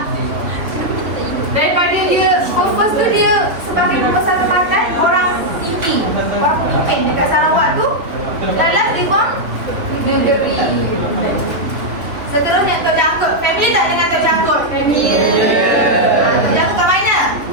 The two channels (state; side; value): late; left; 3.1 ms